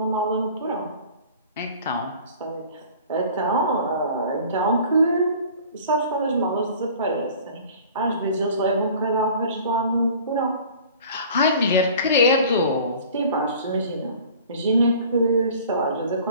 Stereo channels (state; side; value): inverted; both; correlation -0.46